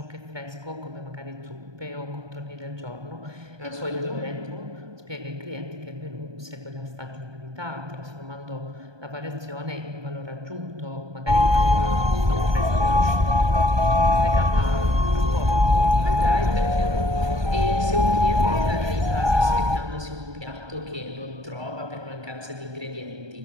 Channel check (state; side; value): late; left; 1.2 ms